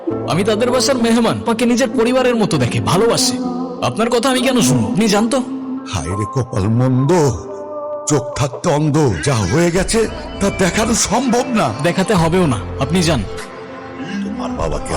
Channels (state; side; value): identical; both; correlation 1.00